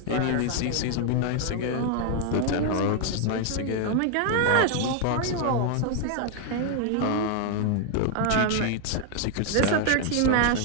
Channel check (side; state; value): both; different; correlation 0.00